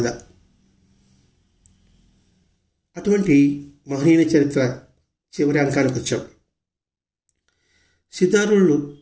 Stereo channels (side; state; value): both; identical; correlation 1.00